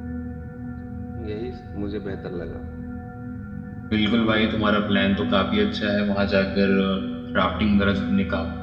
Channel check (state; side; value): identical; both; correlation 1.00